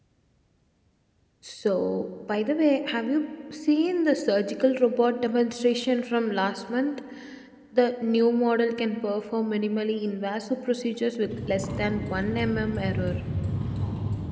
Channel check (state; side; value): identical; both; correlation 1.00